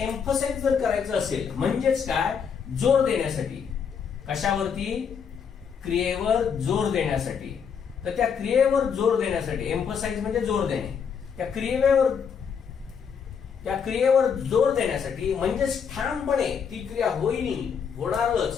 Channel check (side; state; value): right; quieter; 6.8 dB